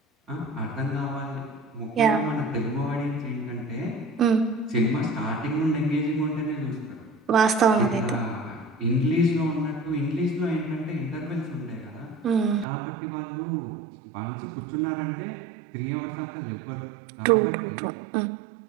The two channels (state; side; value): drops out; left; at 12.7 s